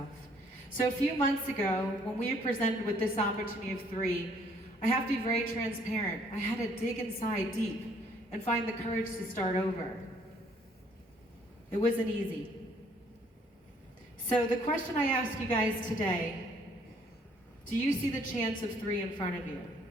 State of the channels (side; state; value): both; normal; correlation 0.63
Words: So a few months ago, when we were presented with this opportunity of 3, I have to be very transparent. I had to dig inside deep and find the courage to start over. It wasn't easy. So the question I ask you guys today, do you see the chance of 3 in front of you?